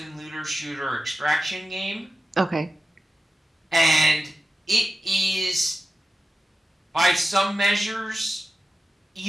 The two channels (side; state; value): both; normal; correlation 0.93